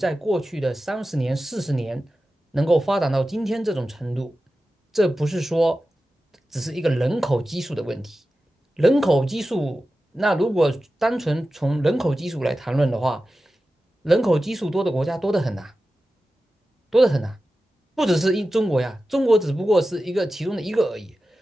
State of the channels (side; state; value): both; normal; correlation 0.93